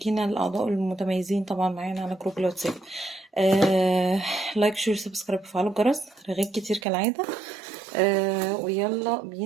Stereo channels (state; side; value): drops out; left; at 6.9 s